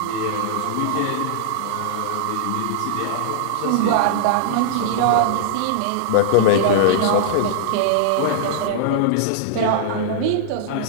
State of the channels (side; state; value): both; different; correlation -0.01